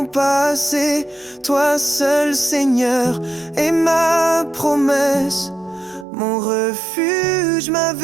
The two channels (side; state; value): left; drops out; at 6.1 s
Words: passé. Toi seul, Seigneur, est ma promesse, mon refuge, ma